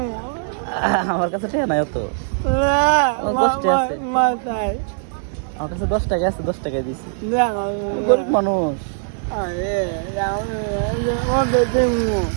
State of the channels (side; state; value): left; silent; 58 dB below the other